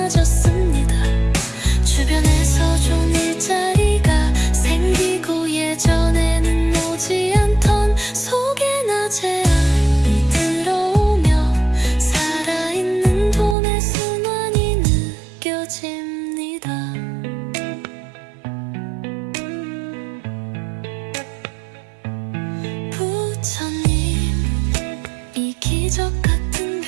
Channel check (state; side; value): drops out; left; at 13.6 s